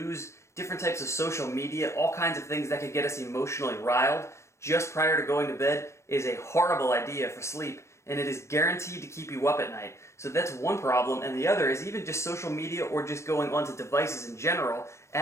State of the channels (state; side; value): late; right; 0.14 ms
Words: different types of social media, all kinds of things that could get us emotionally riled just prior to going to bed is a horrible idea for sleep. And it is guaranteed to keep you up at night. So that's one problem, and the other is even just social media or just going onto devices in general